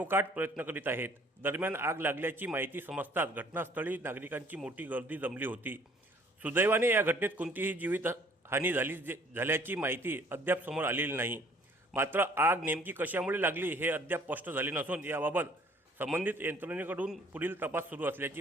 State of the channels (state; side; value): normal; both; correlation 0.57